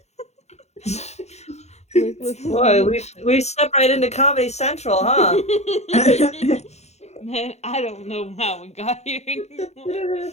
Boy, we stepped right into Comedy Central, huh? Man, I don't know how we got here anymore.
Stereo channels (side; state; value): right; late; 0.32 ms